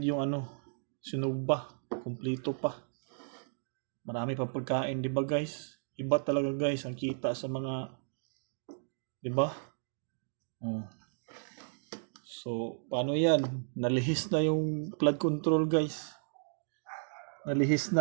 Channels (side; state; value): left; silent; digital silence